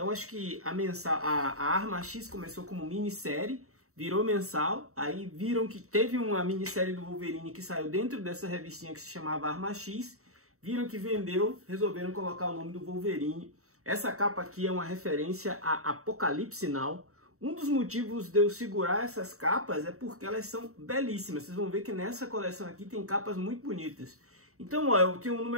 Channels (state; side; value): late; left; 0.64 ms